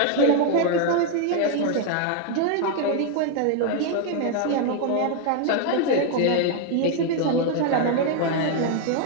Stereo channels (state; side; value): different; both; correlation 0.00